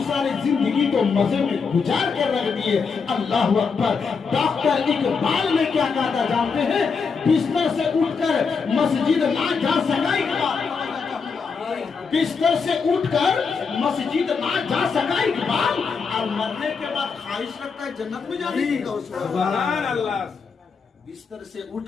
सारी जिंदगी तो मजे में गुजार कर रख दिए। अल्लाह अकबर। डॉक्टर इकबाल ने क्या कहा था जानते हैं? बिस्तर से उठकर मस्जिद ना जा सका इकबाल, बिस्तर से उठकर मस्जिद ना जा सका इकबाल, और मरने के बाद ख्वाहिश रखता है जन्नत में जाने की। सुभान अल्लाह। बिस्तर से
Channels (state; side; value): quieter; right; 5.4 dB